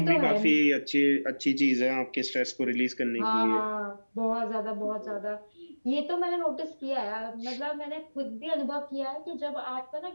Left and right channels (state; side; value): inverted; both; correlation -1.00